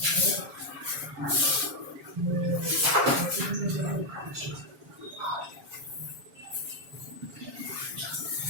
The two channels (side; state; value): left; late; 7.2 ms